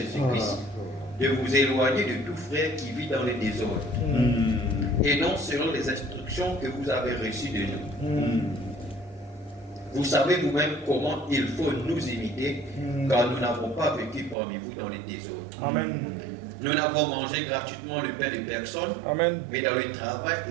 de vous éloigner de tout frère qui vit dans le désordre, et non selon les instructions que vous avez reçues de nous. Vous savez vous-même comment il faut nous imiter, car nous n'avons pas vécu parmi vous dans les désordres. Amen. Nous n'avons mangé gratuitement le pain de personne, Amen. mais dans le travail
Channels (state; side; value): drops out; left; at 14.4 s